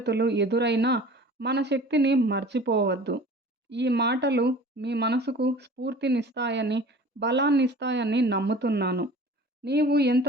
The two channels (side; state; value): both; normal; correlation 0.43